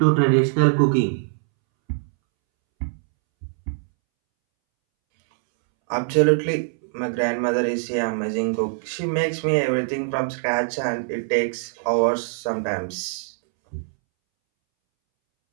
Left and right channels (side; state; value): left; silent; 63 dB below the other